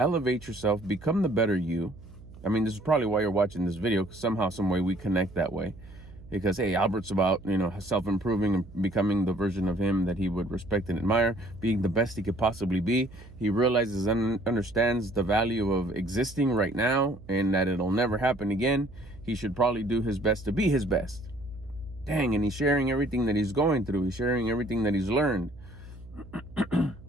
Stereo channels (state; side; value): noise; right; hum, 19 dB below the sound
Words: yourself, become the better you. I mean, this is probably why you're watching this video, because somehow, some way we connect that way. Because, hey, Albert's about, self-improving and becoming the version of him that he would respect and admire, being the best he could possibly be. He realizes and understands the value of existing right now and that it'll never happen again. He should probably do his best to be his best. Dang, and he's sharing everything that he's going through. He's sharing everything that he's learned